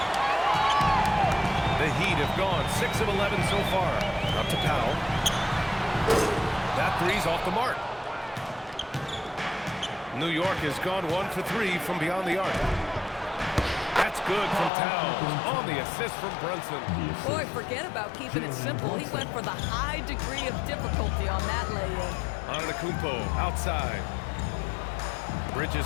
The Heat have gone 6 of 11 so far. Up to Powell. That 3's off the mark. New York has gone 1 for 3 from beyond the arc. That's good from Towns. On the assist from Brunson. Boy, forget about keeping it simple. He went for the high degree of difficulty on that lay-in. Antetokounmpo outside.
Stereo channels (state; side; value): drops out; right; at 14.7 s